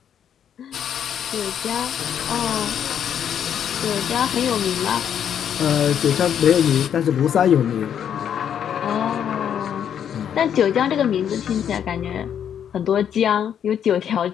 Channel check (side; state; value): right; quieter; 8.9 dB